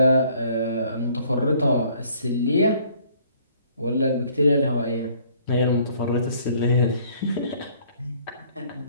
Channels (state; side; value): inverted; both; correlation -0.60